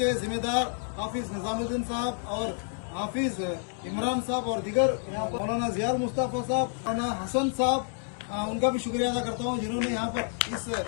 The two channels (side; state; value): right; silent; 58 dB below the other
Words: जिम्मेदार हाफिज निजामुद्दीन साहब और हाफिज इमरान साहब और दिगर यहाँ पर मौलाना जियाल मुस्तफा साहब, मौलाना हसन साहब, उनका भी शुक्रिया अदा करता हूँ जिन्होंने यहाँ पर इस